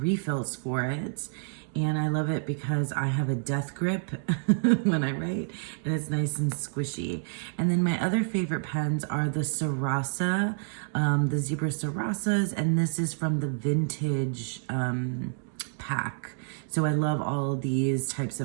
for it, and I love it because I have a death grip when I write, and it's nice and squishy. And then my other favorite pens are the Sarasa, the Zebra Sarasas, and this is from the Vintage pack. So I love all these types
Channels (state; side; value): silent; left; 59 dB below the other